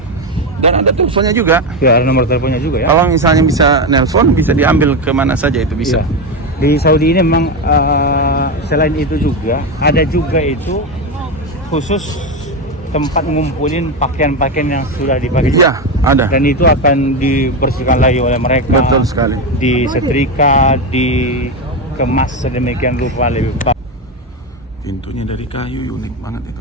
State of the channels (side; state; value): both; normal; correlation 0.13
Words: ada teleponnya juga. Ya, ada nomor teleponnya juga ya. Kalau misalnya bisa nelpon, bisa diambil kemana saja itu bisa. Ya. Di Saudi ini memang selain itu juga ada juga itu khusus tempat ngumpulin pakaian-pakaian yang sudah dipakai. Iya, ada. Dan itu akan dibersihkan lagi oleh mereka. Betul sekali. Disetrika, dikemas sedemikian rupa lebih baik. Pintunya dari kayu, unik banget